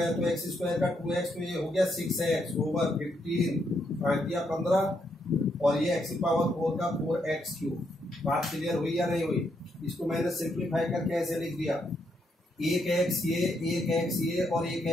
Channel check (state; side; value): normal; both; correlation 0.77